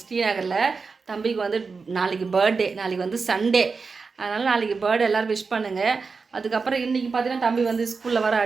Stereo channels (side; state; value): left; quieter; 4.7 dB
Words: ஸ்ரீநகரில். தம்பிக்கு வந்து நாளைக்கு பர்த்டே, நாளைக்கு வந்து சண்டே, அதனால் நாளைக்கு பர்த்டே எல்லோரும் விஷ் பண்ணுங்கள். அதுக்கப்புறம் இன்றைக்கி பார்த்தீங்கன்னா தம்பி வந்து ஸ்கூலில் வர